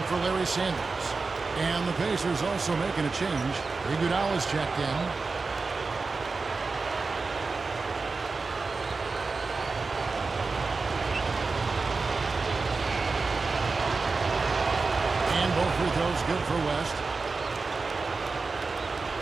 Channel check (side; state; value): left; quieter; 4.1 dB